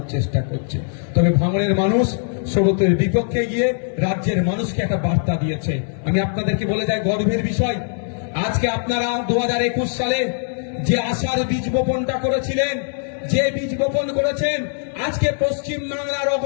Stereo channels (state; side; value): silent; right; digital silence